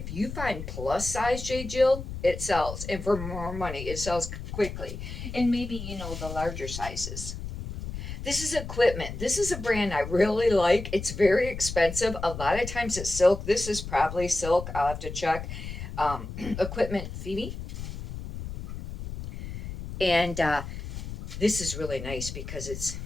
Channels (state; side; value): noise; left; rumble, 8 dB below the sound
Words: you find plus size J. Jill, it sells, and for more money, it sells quickly. And maybe the larger sizes. This is equipment. This is a brand I really like. It's very expensive. A lot of times it's silk. This is probably silk. I'll have to check. Equipment Phoebe. And this is really nice because it's